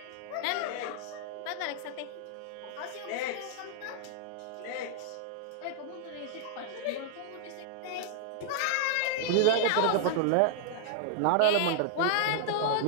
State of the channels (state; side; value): different; both; correlation -0.01